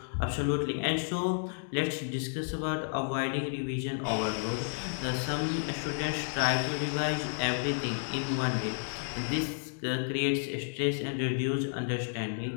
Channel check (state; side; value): silent; right; digital silence